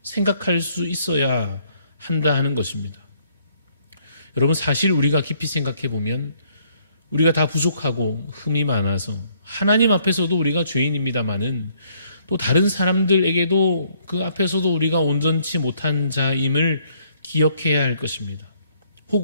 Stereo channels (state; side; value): inverted; both; correlation -0.67